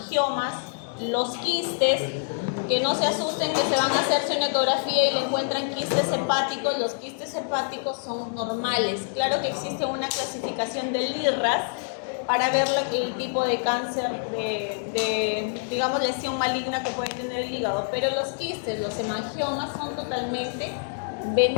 los quistes, que no se asusten que se van a hacerse una ecografía y le encuentran quistes hepáticos. Los quistes hepáticos son normales. Claro que existe una clasificación del IRRAS para ver el tipo de cáncer, digamos, lesión maligna que puede tener el hígado. Pero los quistes, los hemangiomas son totalmente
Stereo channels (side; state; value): right; silent; 61 dB below the other